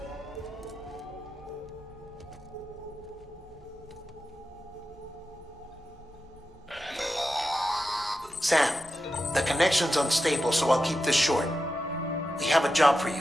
Sam, the connection's unstable, so I'll keep this short. We have a job for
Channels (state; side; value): normal; both; correlation 0.90